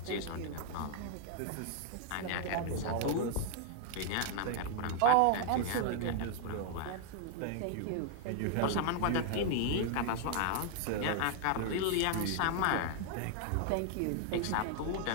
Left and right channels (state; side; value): different; both; correlation 0.00